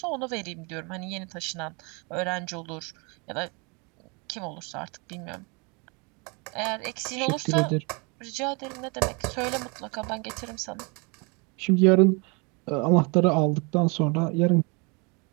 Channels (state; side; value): quieter; left; 31.3 dB